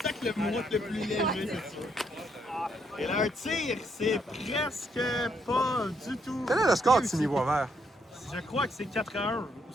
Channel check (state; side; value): normal; both; correlation 0.74